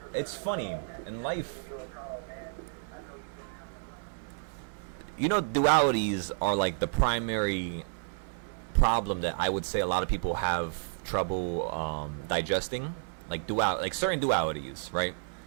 it's funny in life. You know, dualities are like the primary problem that I would say a lot of people have trouble digesting, like certain dualities, right?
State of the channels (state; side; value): silent; left; 57 dB below the other